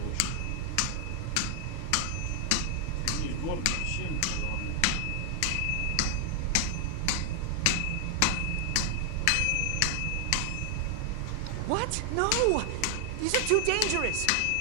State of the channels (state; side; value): different; both; correlation 0.00